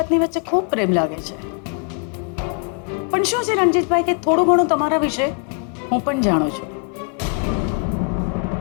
વચ્ચે ખૂબ પ્રેમ લાગે છે. પણ શું છે રણજીતભાઈ કે થોડું ઘણું તમારા વિશે હું પણ જાણું છું.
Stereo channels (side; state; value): right; quieter; 39.7 dB